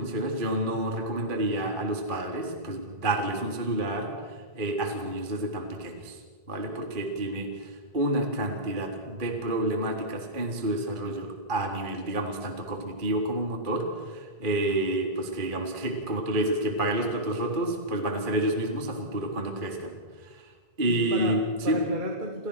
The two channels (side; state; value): left; late; 2.4 ms